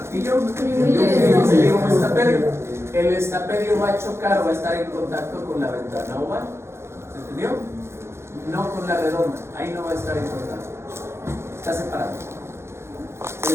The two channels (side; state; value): left; late; 0.13 ms